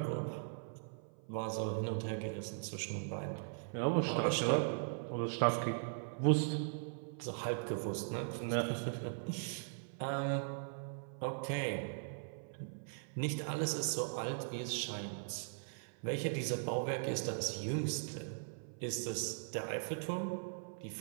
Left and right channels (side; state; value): left; silent; 51 dB below the other